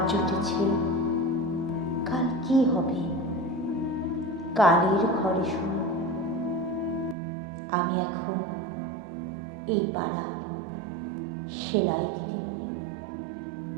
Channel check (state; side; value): drops out; left; at 7.2 s